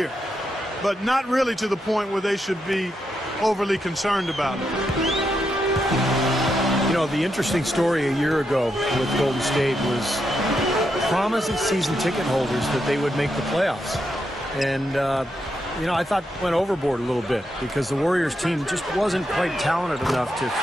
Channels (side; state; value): both; normal; correlation 0.83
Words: but not really to the point where they should be overly concerned about it. You know, the interesting story a year ago with Golden State was promising season ticket holders that they would make the playoffs. And, you know, I thought went overboard a little bit because the Warriors team just wasn't quite talented enough to